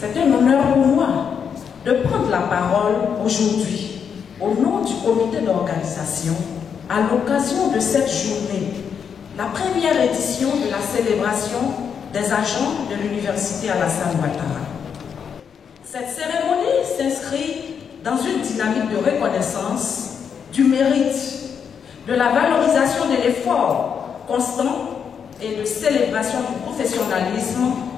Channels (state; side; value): quieter; right; 7.1 dB